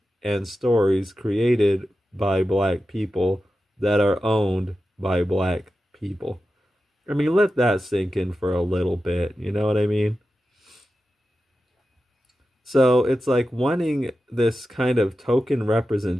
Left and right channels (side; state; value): both; normal; correlation 0.92